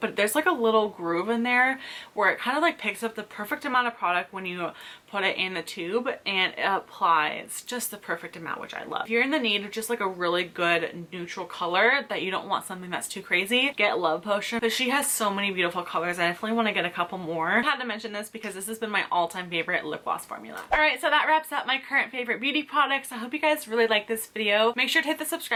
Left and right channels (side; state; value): both; identical; correlation 1.00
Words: there's like a little groove in there where it kind of like picks up the perfect amount of product when you put it in the tube, and it applies just the perfect amount, which I love. If you're in the need of just like a really good neutral color that you don't want something that's too crazy, get Love Potion, but she has so many beautiful colors. I definitely want to get a couple more. I had to mention this because this has been my all-time favorite lip gloss formula. All right, so that wraps up my current favorite beauty products. I hope you guys really like this video. Make sure to hit the